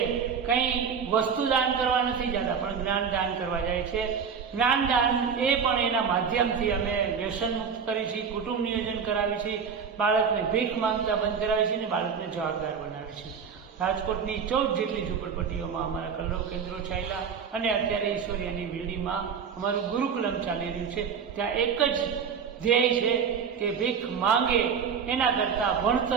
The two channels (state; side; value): quieter; left; 6.6 dB